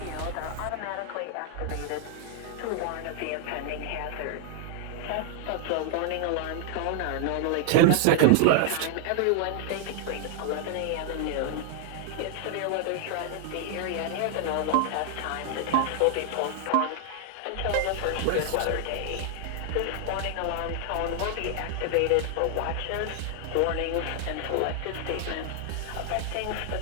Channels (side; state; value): both; different; correlation 0.00